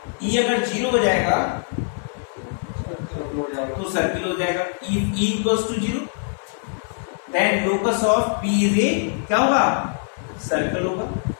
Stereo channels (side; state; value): right; silent; 58 dB below the other